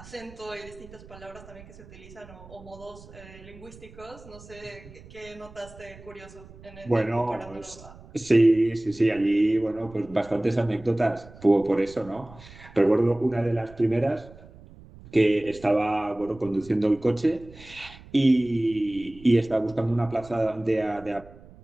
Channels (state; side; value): noise; right; rumble, 20 dB below the sound